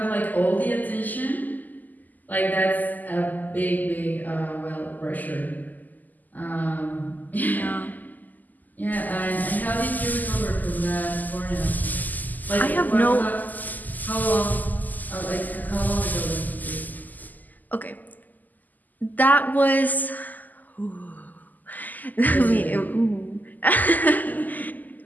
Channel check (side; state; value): right; late; 0.083 ms